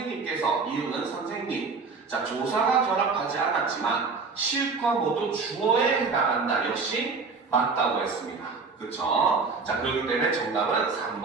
이응은 선생님. 자, 조사가 결합하지 않았지만 시읒과 모두 주어에 해당한다. 역시 맞다고 했습니다. 그쵸? 자, 그렇기 때문에 정답은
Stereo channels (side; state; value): left; quieter; 4.6 dB